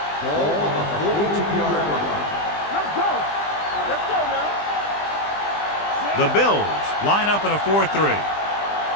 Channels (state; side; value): late; right; 20 ms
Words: Ball on the 42-yard line. Let's go. Let's go now. The Bills line up in a 4-3.